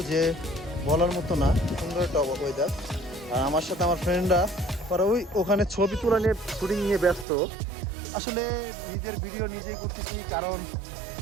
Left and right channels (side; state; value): left; drops out; at 7.2 s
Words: যে বলার মতো না। সুন্দর একটা ওয়েদার। আর আমার সাথে আমার ফ্রেন্ডরা ওরা ওখানে ছবি তোলা নিয়ে, শুটিং নিয়ে ব্যস্ত। আসলে নিজের ভিডিও নিজেই করতেছি, কারণ